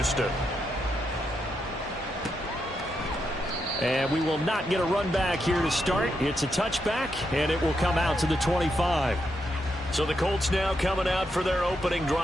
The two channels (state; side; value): normal; both; correlation 0.82